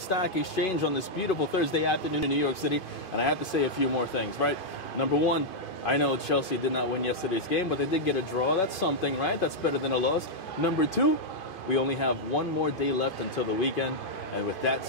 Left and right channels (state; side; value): late; right; 2.5 ms